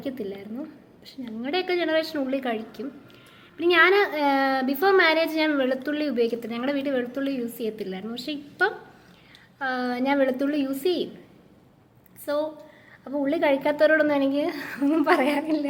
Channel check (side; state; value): both; identical; correlation 1.00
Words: പക്ഷെ ഞങ്ങളുടെയൊക്കെ ജനറേഷൻ ഉള്ളി കഴിക്കും. പിന്നെ ഞാൻ ബിഫോർ മാരേജ് ഞാൻ വെളുത്തുള്ളി ഉപയോഗിക്കത്തില്ല, ഞങ്ങളുടെ വീട്ടിൽ വെളുത്തുള്ളി യൂസ് ചെയ്യത്തില്ലായിരുന്നു. പക്ഷെ ഇപ്പം ഞാൻ വെളുത്തുള്ളി യൂസ് ചെയ്യും. അപ്പോൾ ഉള്ളി കഴിക്കാത്തവരോടൊന്നും എനിക്ക് ഒന്നും പറയാനില്ല.